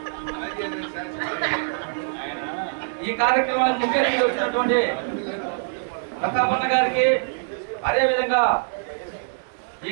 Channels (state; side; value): silent; left; digital silence